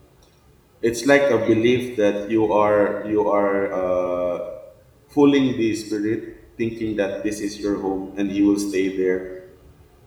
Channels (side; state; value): both; identical; correlation 1.00